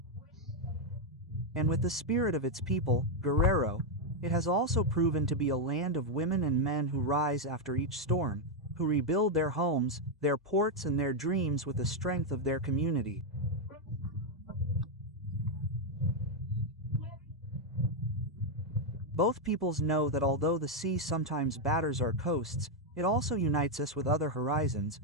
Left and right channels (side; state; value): both; normal; correlation 0.01